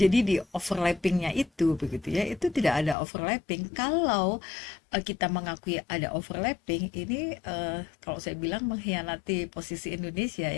di overlappingnya itu begitu ya, itu tidak ada overlapping. Kalau kita mengakui ada overlapping, ini kalau saya bilang mengkhianati posisi Indonesia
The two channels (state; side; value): drops out; right; at 3.0 s